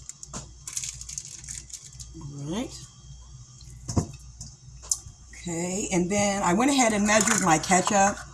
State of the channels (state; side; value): identical; both; correlation 1.00